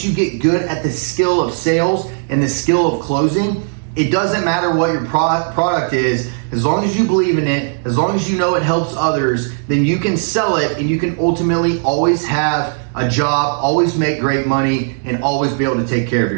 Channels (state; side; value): silent; left; digital silence